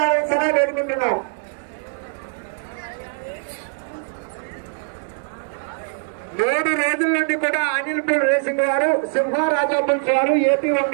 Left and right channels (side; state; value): left; silent; 64 dB below the other